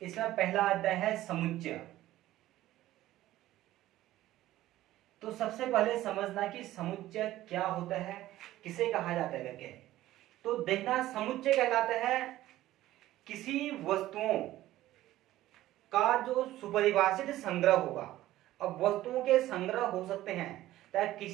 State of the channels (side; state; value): left; quieter; 15.0 dB